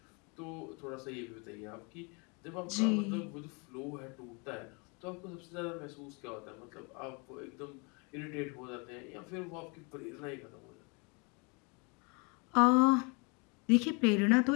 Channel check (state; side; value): quieter; right; 31.7 dB